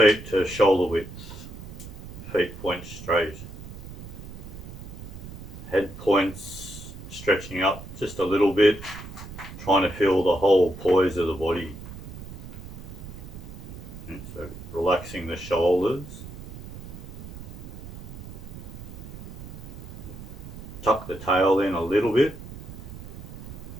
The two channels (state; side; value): noise; right; rumble, 12 dB below the sound